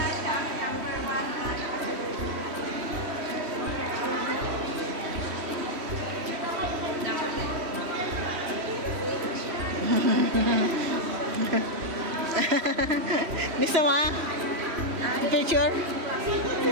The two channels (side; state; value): left; late; 3.1 ms